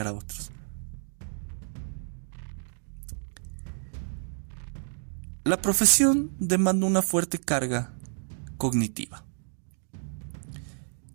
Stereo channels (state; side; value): silent; left; digital silence